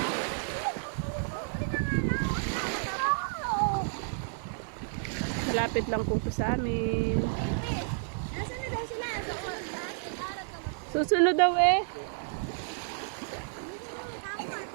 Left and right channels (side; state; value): left; silent; digital silence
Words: Malapit lang po ito sa amin. Susunod daw eh.